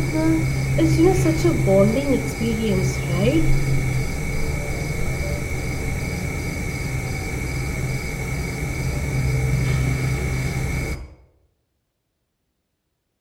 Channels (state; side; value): identical; both; correlation 1.00